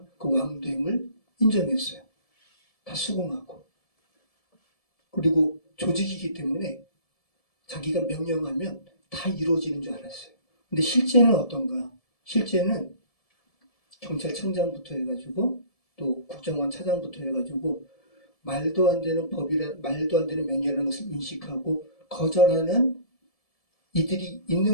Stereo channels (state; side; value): late; right; 1.7 ms